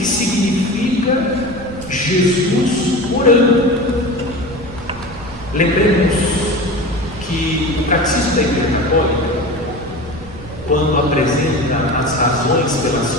significa Jesus orando. Lembremos que o Catecismo da Igreja Católica, quando apresenta as razões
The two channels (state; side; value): noise; right; rumble, 16 dB below the sound